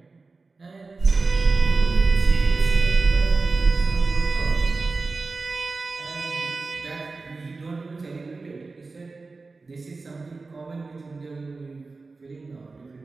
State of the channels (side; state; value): left; quieter; 3.9 dB